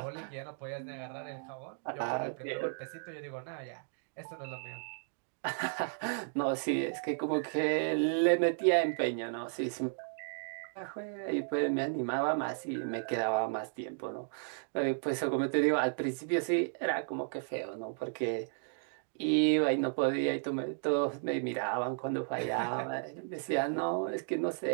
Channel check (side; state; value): left; silent; digital silence